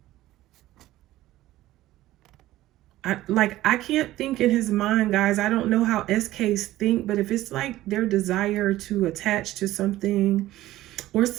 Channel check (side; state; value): left; quieter; 15.6 dB